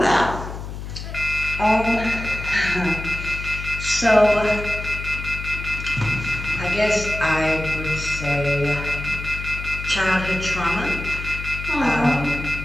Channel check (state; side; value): noise; left; hum, 8 dB below the sound